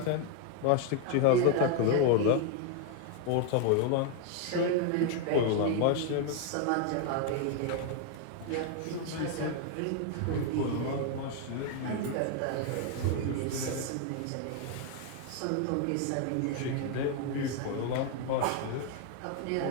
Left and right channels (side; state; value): both; different; correlation 0.01